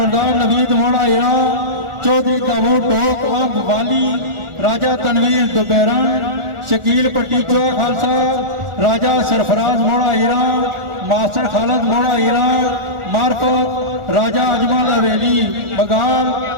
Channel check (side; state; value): left; late; 1.4 ms